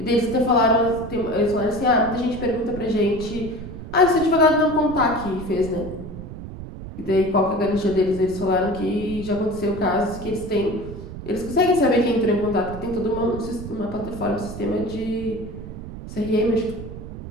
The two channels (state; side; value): noise; right; rumble, 11 dB below the sound